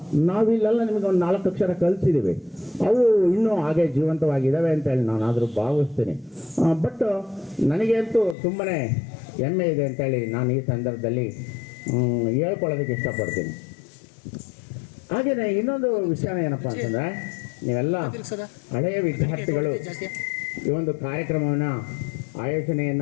ನಾವಿಲ್ಲೆಲ್ಲ ನಿಮಗೆ ಒಂದು 4 ಅಕ್ಷರ ಕಲಿಸಿದ್ದೀವಿ. ಅವು ಇನ್ನೂ ಹಾಗೆ ಜೀವಂತವಾಗಿದ್ದಾವೆ ಅಂತೇಳಿ ನಾನಾದರೂ ಭಾವಿಸ್ತೀನಿ. ಬಟ್ ನನಗಂತೂ ತುಂಬಾ ಹೆಮ್ಮೆ ಇದೆ ಅಂತೇಳಿ ನಾನು ಈ ಸಂದರ್ಭದಲ್ಲಿ ಹೇಳ್ಕೊಳ್ಳೋದಕ್ಕೆ ಇಷ್ಟಪಡ್ತೀನಿ. ಹಾಗೆಯೇ ಇನ್ನೊಂದು ವಿಷಯ ಏನಪ್ಪ ಅಂತಂದರೆ, ನೀವೆಲ್ಲ ಹಳೆಯ ವಿದ್ಯಾರ್ಥಿಗಳು ಈ ಒಂದು ಕಾರ್ಯಕ್ರಮವನ್ನು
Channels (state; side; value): drops out; right; at 8.3 s